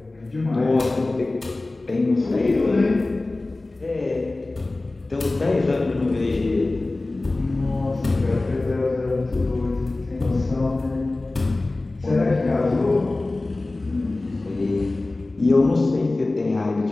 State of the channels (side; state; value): right; quieter; 3.0 dB